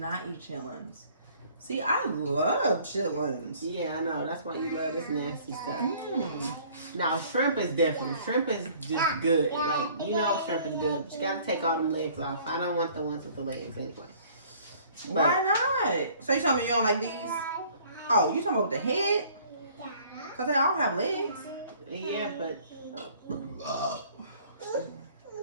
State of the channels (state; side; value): inverted; both; correlation -0.55